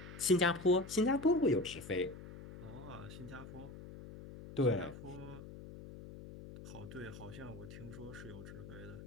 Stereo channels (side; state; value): left; noise; hum, 13 dB below the sound